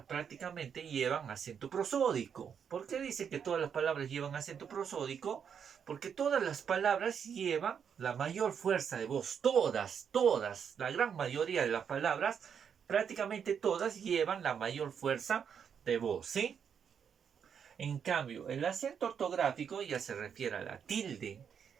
prácticamente llevan acento prosódico. ¿Por qué dice que todas las palabras llevan acento prosódico? Porque todas las palabras llevan la mayor fuerza de voz. Todas, la gran mayoría de las palabras, prácticamente todas llevan la mayor fuerza de voz, ¿sí? En cambio, el acento ortográfico ya se refiere a la tilde.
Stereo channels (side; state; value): left; quieter; 7.5 dB